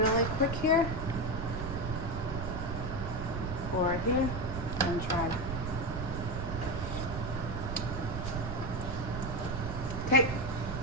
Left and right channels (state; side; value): noise; right; rumble, 5 dB below the sound